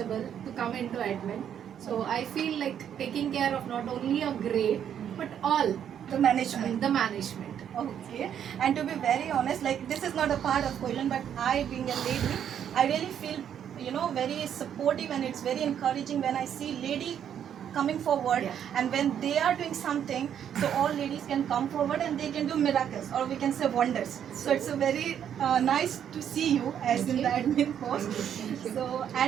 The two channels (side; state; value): left; quieter; 9.1 dB